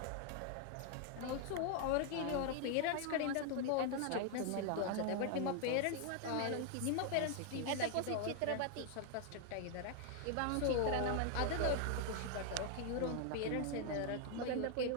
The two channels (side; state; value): both; different; correlation 0.00